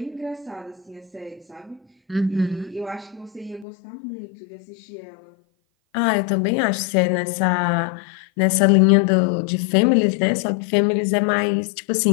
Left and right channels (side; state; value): right; drops out; at 3.7 s